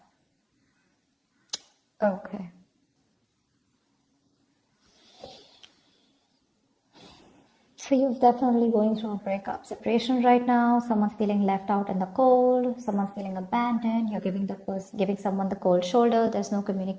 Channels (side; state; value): both; identical; correlation 1.00